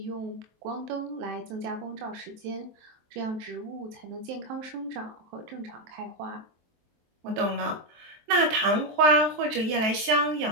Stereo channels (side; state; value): left; late; 23 ms